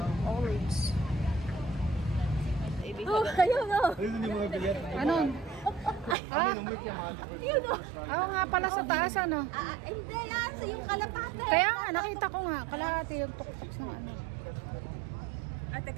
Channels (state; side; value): drops out; left; at 6.2 s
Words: Olives. Oh, ayun o. Ano? Ha? Yun o. Oo nga pala sa taas ano. Hindi yan. Sa yung kalapate. Kaya nga, nakita ko nga. Kalahati yung tuktok ng ano.